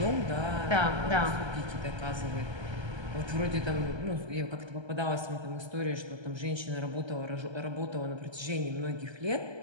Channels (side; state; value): left; late; 1.3 ms